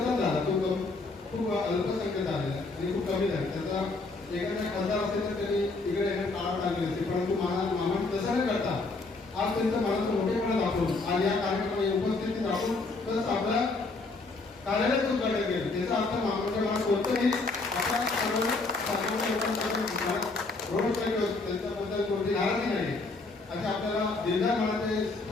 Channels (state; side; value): quieter; right; 3.6 dB